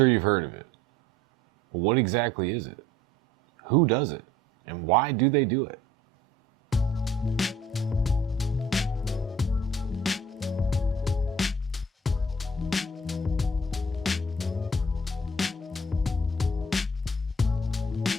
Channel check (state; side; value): normal; both; correlation 0.54